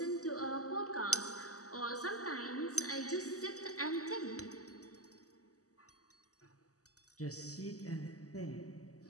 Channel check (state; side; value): late; right; 0.66 ms